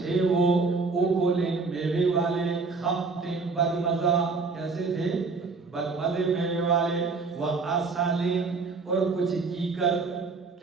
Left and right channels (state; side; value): quieter; left; 4.3 dB